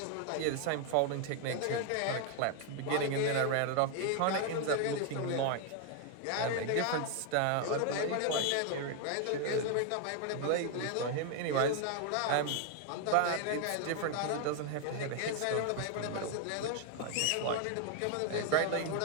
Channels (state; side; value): different; both; correlation 0.00